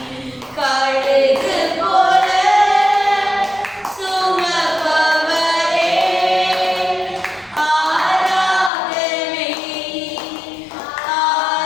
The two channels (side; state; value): right; drops out; at 8.7 s